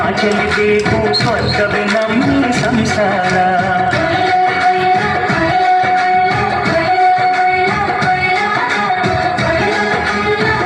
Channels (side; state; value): both; identical; correlation 1.00